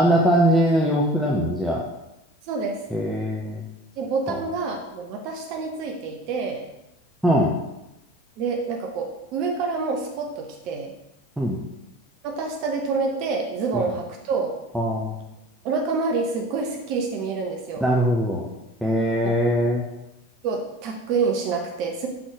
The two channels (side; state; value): both; normal; correlation 0.42